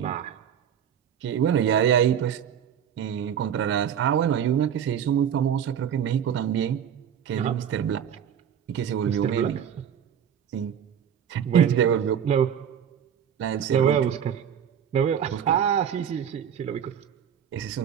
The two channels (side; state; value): left; quieter; 8.7 dB